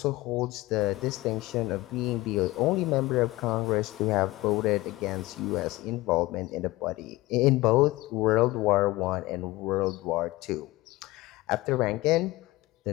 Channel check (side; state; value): right; quieter; 19.5 dB